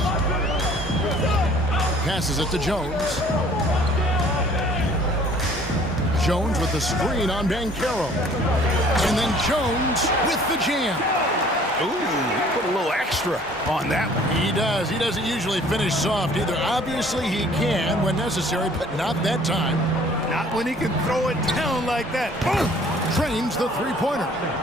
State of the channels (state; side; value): normal; both; correlation 0.54